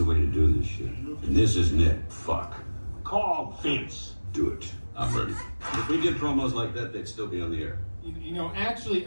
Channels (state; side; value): inverted; both; correlation -1.00